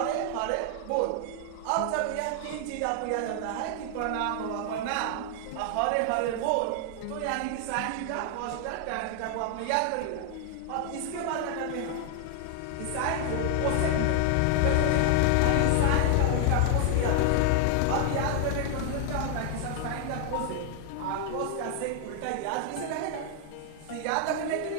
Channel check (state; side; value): different; both; correlation 0.00